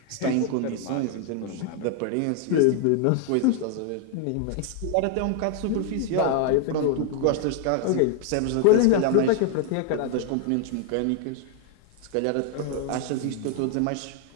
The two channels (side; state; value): both; different; correlation 0.00